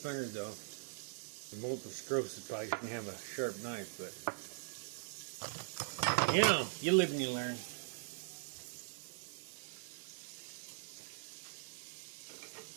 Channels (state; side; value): silent; left; digital silence